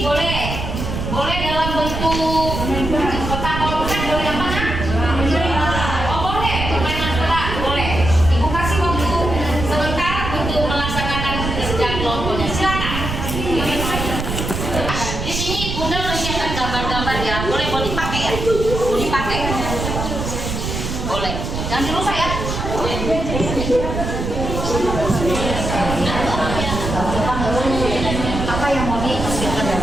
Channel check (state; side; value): noise; right; rumble, 4 dB below the sound